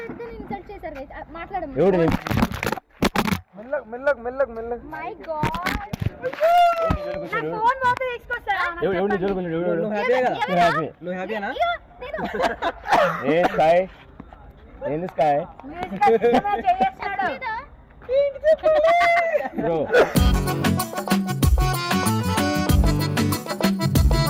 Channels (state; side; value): identical; both; correlation 1.00